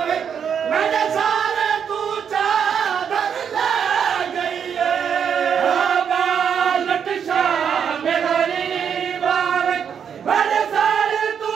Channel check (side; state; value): left; quieter; 7.6 dB